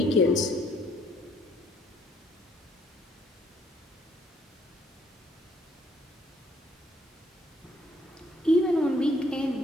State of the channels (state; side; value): normal; both; correlation 0.66